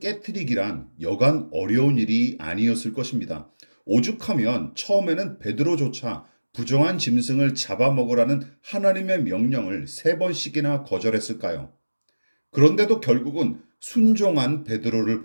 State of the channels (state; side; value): inverted; both; correlation -1.00